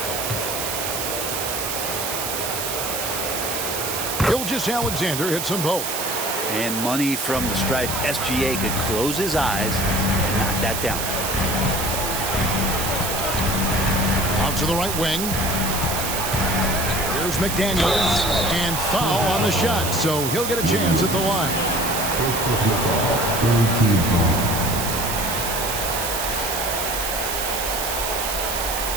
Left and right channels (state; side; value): noise; right; hiss, 3 dB below the sound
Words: Gilgeous-Alexander hits them both. And money from the stripe. SGA could close his eyes and knock that down. Out to the right wing. Here's McDaniels. And foul on the shot, so he'll get a chance at the line. First personal foul. Third team foul.